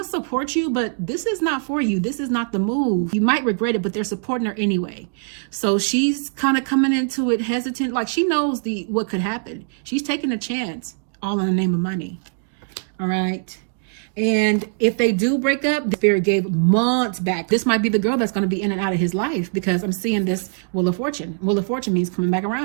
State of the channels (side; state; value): left; silent; 64 dB below the other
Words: to support you, but this is not for you. This is not the move. You might regret it, but they're supporting her anyway. So she's kind of coming into it hesitant. Like, she knows what could happen. She's taking a chance, all in the name of money. All right. And if they do break up, the spirit gave months back. This might be the girl that's going to be in and out of his life, because I'm seeing this Wheel of Fortune. Wheel of Fortune means coming back